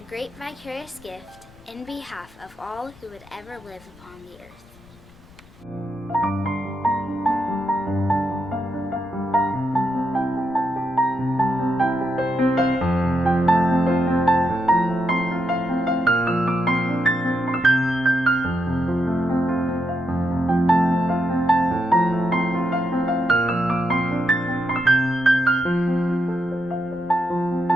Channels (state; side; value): noise; left; rumble, 25 dB below the sound